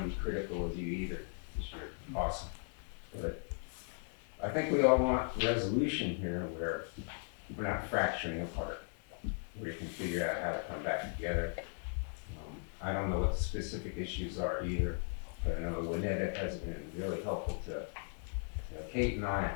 be critical of you either, because you're awesome. But I think we all want resolution here where we're not fracturing apart, where you can figure out how to come back together. I don't know what the specific issues are either, but I know Windham has been really helpful to Kate and I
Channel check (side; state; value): right; silent; 53 dB below the other